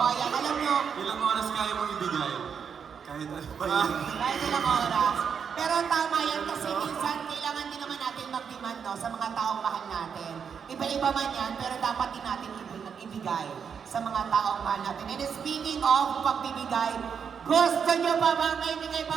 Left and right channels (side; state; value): left; quieter; 6.9 dB